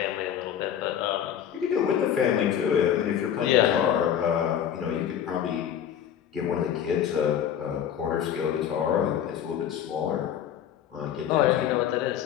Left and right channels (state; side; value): quieter; right; 9.5 dB